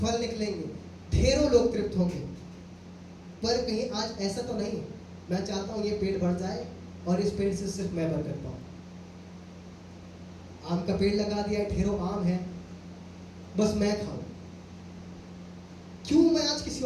निकलेंगे, ढेरों लोग तृप्त होंगे। पर कहीं आज ऐसा तो नहीं, मैं चाहता हूँ ये पेड़ बढ़ जाए और इस पेड़ से सिर्फ मैं बरकत पाऊँ। आम का पेड़ लगा दिया है, ढेरों आम है, बस मैं खाऊं, क्यों मैं आज किसी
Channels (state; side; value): identical; both; correlation 1.00